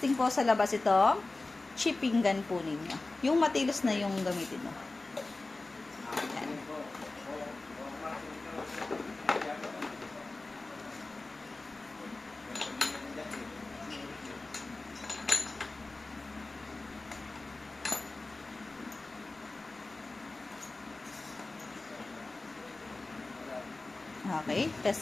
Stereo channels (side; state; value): right; quieter; 3.2 dB